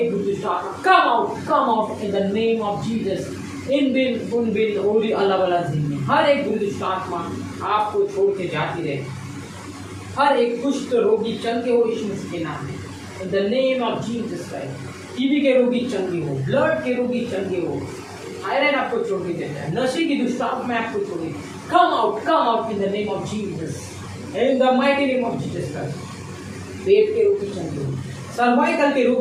बुरी दुष्ट आत्मा come out in the name of Jesus. इन बिन उन बिन ओरी अल्लाह वाला जिंदगी, हर एक बुरी दुष्ट आत्मा आपको छोड़ के जाती रहे। हर एक कुष्ठ रोगी चंगे हो यीशु मसीह के नाम में। In the name of Jesus Christ. TB के रोगी चंगे हो, ब्लड के रोगी चंगे हो, थायराइड आपको छोड़ के देता है, नशे की दुष्ट आत्मा आपको छोड़ के come out in the name of Jesus. In the mighty name of Jesus Christ. पेट के रोगी चंगे हो, सर्वाइकल के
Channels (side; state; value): both; identical; correlation 1.00